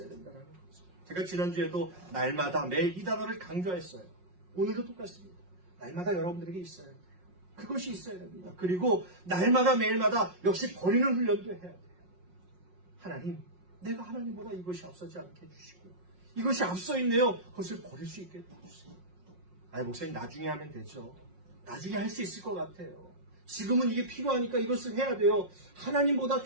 된다는 거죠. 제가 지난주에도 날마다 매일 이 단어를 강조했어요. 오늘도 똑같습니다. 날마다 여러분들에게 있어야 돼요. 그것이 있어야 됩니다. 그리고 날마다 매일마다 역시 버리는 훈련도 해야 돼요. 하나님, 내가 하나님보다 이것이 앞서지 않게 해주시고 이것이 앞서 있네요. 그것을 버릴 수 있게 해주세요. 목사님 나중에 하면 되죠. 나중에 할 수 있을 것 같아요. 지금은 이게 필요하니까 이것을 해야 돼요. 하나님보다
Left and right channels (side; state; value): left; late; 5.5 ms